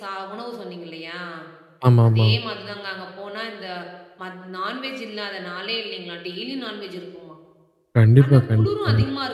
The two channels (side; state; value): both; identical; correlation 1.00